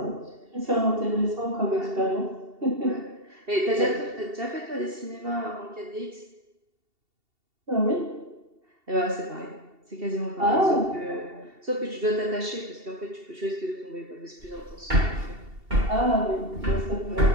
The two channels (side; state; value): left; late; 2.7 ms